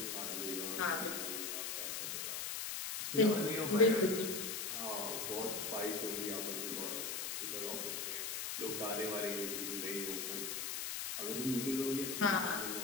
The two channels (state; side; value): noise; left; hiss, 3 dB below the sound